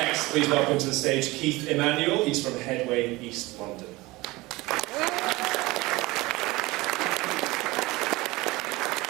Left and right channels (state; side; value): quieter; left; 21.2 dB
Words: please welcome to the stage Keithmanuel. He's from Headway, East London.